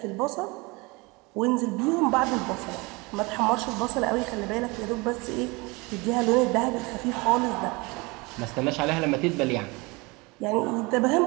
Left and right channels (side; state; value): left; quieter; 25.7 dB